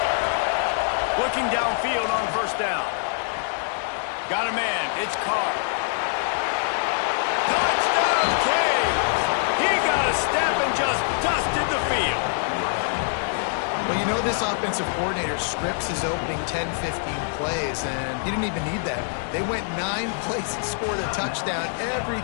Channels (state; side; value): silent; right; digital silence